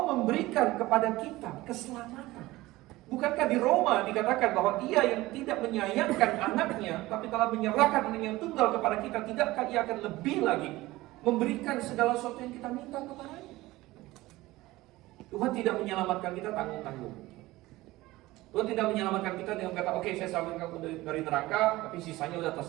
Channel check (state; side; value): quieter; left; 18.6 dB